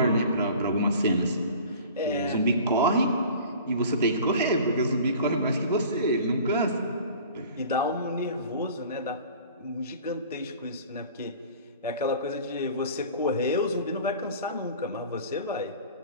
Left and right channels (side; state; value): both; inverted; correlation -0.44